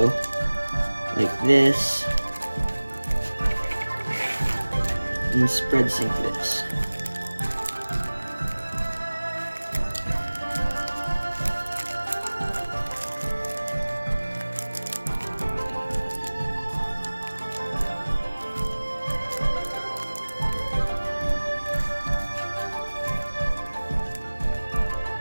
like this, and spread sync this.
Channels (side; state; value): both; inverted; correlation -1.00